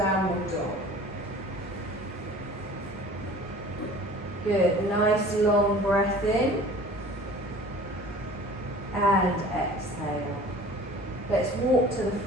dog. Good, nice long breath in and exhale. Let's walk to the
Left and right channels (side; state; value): both; normal; correlation 0.44